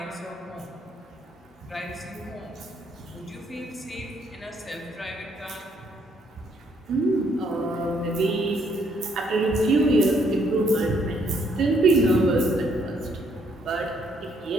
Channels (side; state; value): both; normal; correlation 0.69